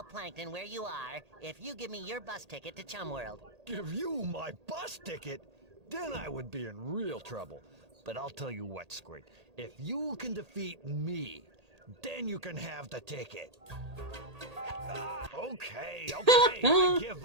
Plankton where you are if you give me your bus ticket to Chum World. Give you my bus ticket? Then I would be in real trouble. But I'll tell you what, Squid. If you can defeat me, then you can have the ticket. Okay, I give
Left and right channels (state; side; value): late; left; 1.8 ms